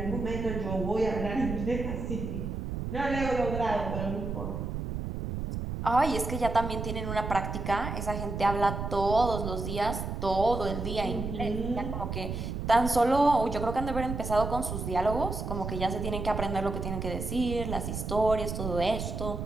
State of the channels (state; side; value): noise; right; rumble, 4 dB below the sound